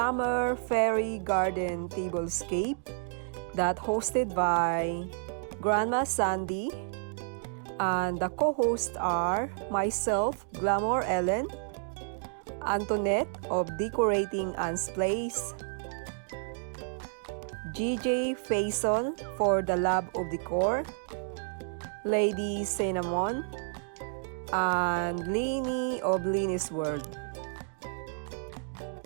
Fairy Garden Tablescape that hosted by Grandma Sandy, and the co-hosts are myself, Glamour Ellen, Antoinette of Decorating Anne's Place, GJ Faison for the Love of Decor, Lady Cinnamon, and Leeny of Leeny's World.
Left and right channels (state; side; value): silent; left; 57 dB below the other